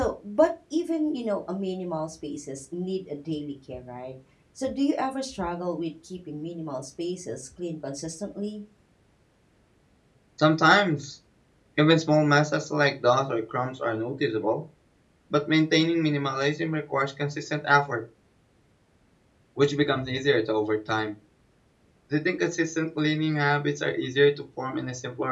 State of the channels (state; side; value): identical; both; correlation 1.00